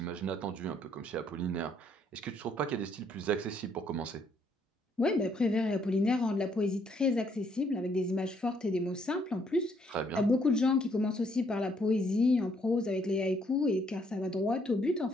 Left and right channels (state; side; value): normal; both; correlation 0.69